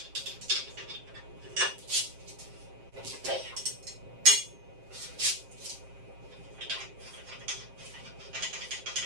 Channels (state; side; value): late; left; 7.6 ms